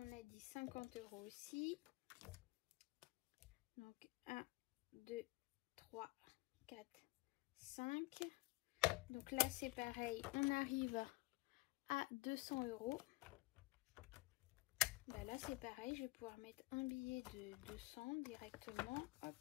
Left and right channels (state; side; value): quieter; right; 22.3 dB